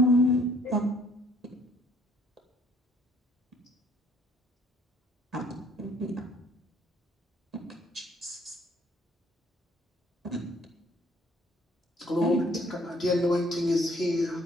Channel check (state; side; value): normal; both; correlation 0.61